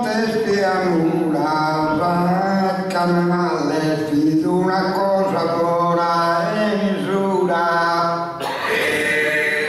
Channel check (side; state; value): both; identical; correlation 1.00